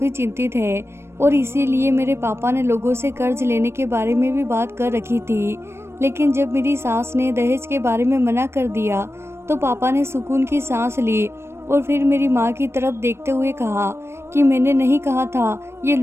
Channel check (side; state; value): left; late; 0.12 ms